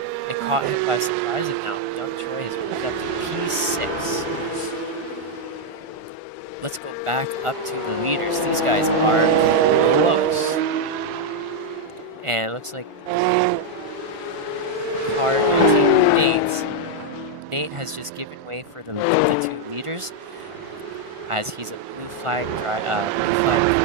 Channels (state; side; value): late; left; 1.4 ms